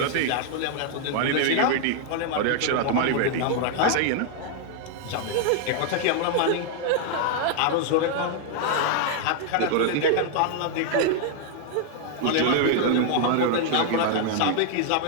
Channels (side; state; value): both; different; correlation 0.00